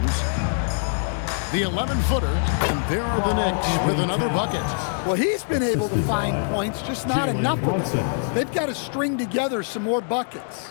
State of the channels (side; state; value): right; silent; 63 dB below the other